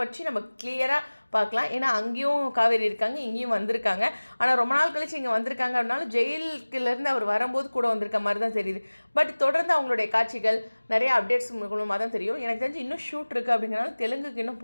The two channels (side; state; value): both; inverted; correlation -1.00